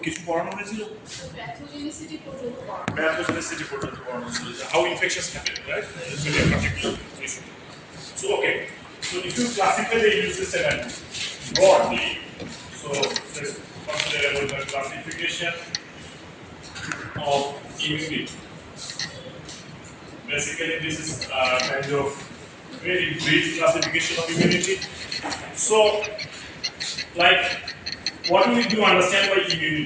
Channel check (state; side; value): identical; both; correlation 1.00